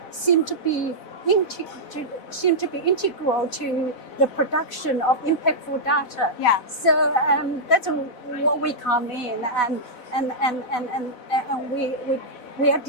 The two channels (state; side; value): late; right; 4.0 ms